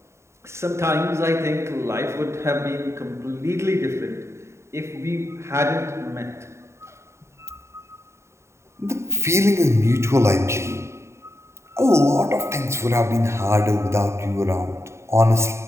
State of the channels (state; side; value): late; left; 0.13 ms